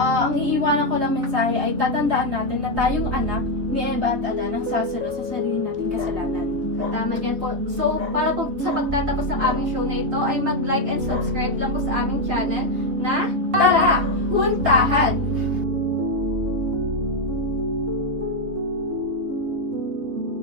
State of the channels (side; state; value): left; late; 3.8 ms